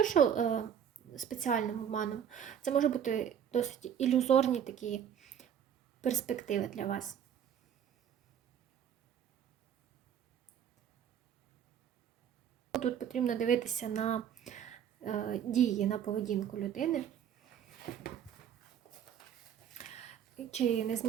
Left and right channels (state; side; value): quieter; left; 8.9 dB